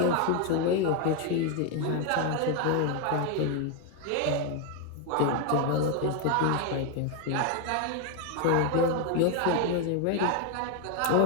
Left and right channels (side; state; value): both; different; correlation 0.01